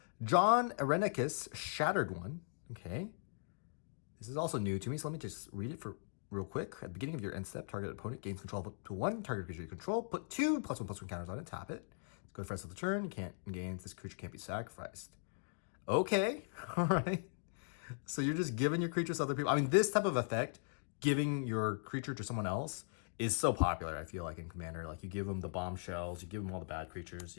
John Irenicus, Shattered one. Okay. This is also new to me, so let me just read it for real quick. At the beginning of your end step, target opponent gains control of up to one target creature you control. Put 2 +1/+1 counters on it, tap it. Go for the rest of the turn. You can't engage. This creature can't be sacrificed. Okay, all right. So you're just giving your creatures to other people. I mean, this type of effect, giving your creature to someone else, is so popular, I feel like, in Commander. Like, you give them the bombshells, you give them all the bad creatures,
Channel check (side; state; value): right; silent; digital silence